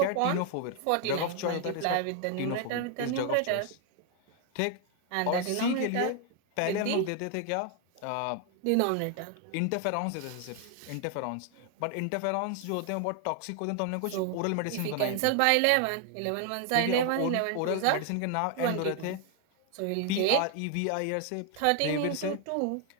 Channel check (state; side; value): different; both; correlation 0.00